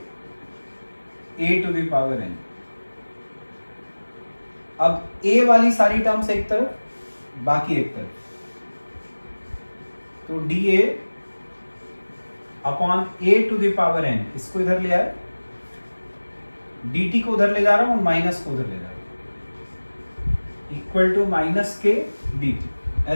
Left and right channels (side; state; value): both; inverted; correlation -1.00